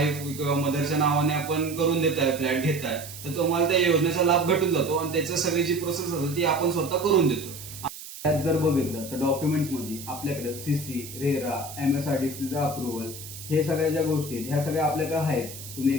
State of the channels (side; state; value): right; noise; hiss, 13 dB below the sound